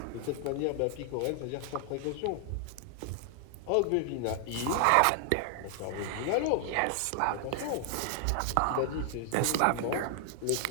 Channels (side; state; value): both; different; correlation 0.00